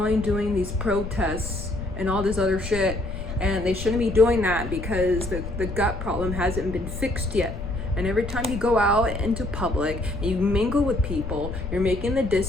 these protests and all this other shit, and they shouldn't be doing that because the gut problem hasn't been fixed yet. And every time you go out into public and you mingle with people, you're making the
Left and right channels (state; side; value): noise; left; rumble, 8 dB below the sound